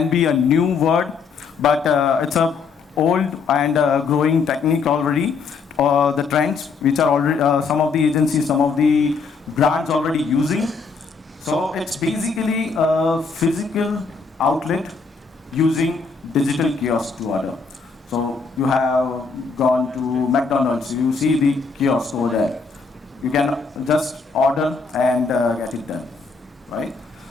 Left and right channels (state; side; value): quieter; right; 4.8 dB